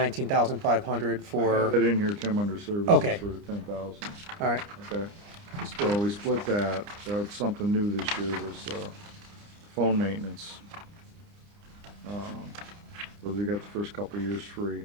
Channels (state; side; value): late; left; 29 ms